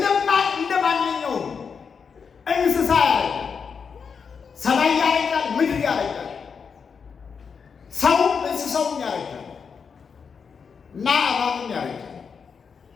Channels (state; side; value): quieter; right; 6.0 dB